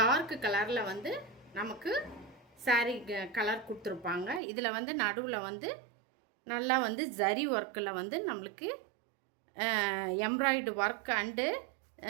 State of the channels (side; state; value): left; drops out; at 4.4 s